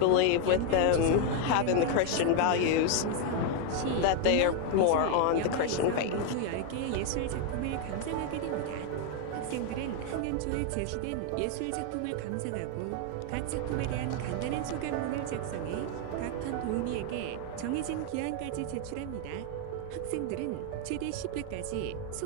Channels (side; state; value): both; different; correlation 0.01